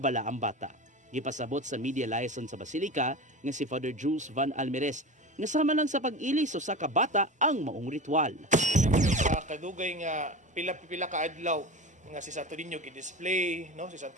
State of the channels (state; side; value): normal; both; correlation 0.29